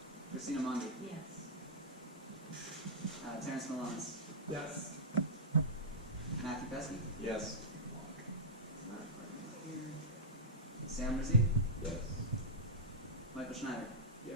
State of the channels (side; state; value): both; normal; correlation -0.10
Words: Christina Mondi. Yes. Terrence Malonis. Yes. Matthew Pesky. Yes. Sam Rizzi. Yes. Michael Schneider.